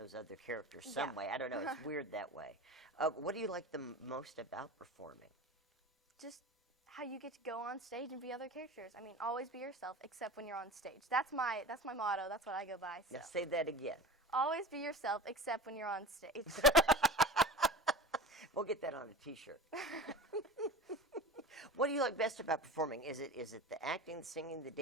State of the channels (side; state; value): both; normal; correlation 0.32